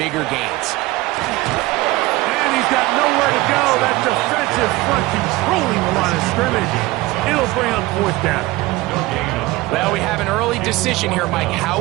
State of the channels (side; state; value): left; quieter; 19.6 dB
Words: gains. And he's got nowhere to go. That defensive front controlling the line of scrimmage. It'll bring up 4th down. Well, we have an early decision here, Mike.